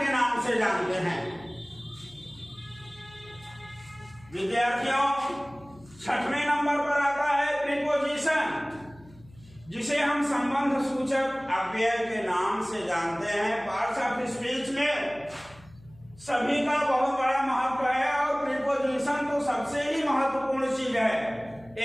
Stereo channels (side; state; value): left; noise; hum, 24 dB below the sound